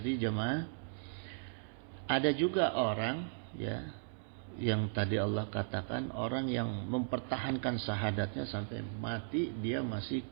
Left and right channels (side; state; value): left; silent; 53 dB below the other